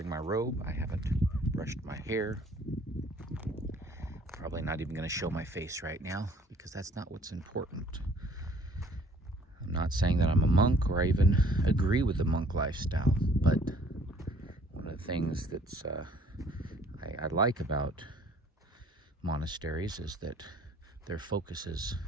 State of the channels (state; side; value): normal; both; correlation 0.57